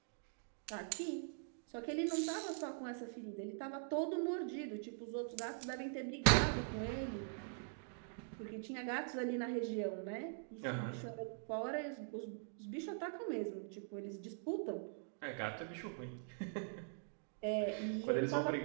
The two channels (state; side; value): silent; left; digital silence